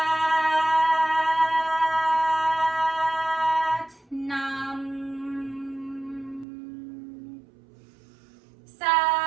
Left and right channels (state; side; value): drops out; left; at 6.5 s